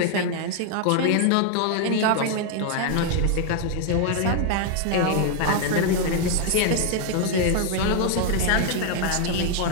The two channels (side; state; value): both; different; correlation 0.00